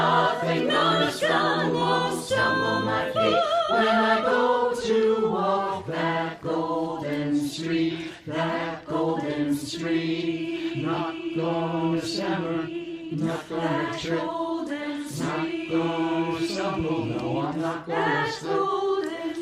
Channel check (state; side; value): identical; both; correlation 1.00